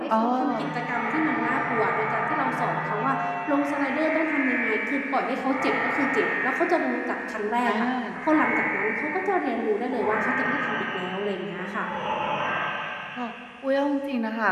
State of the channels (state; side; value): identical; both; correlation 1.00